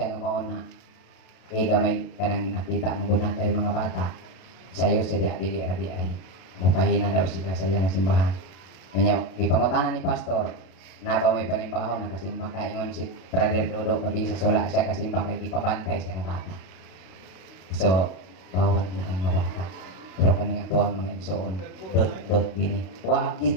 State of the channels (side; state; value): right; late; 32 ms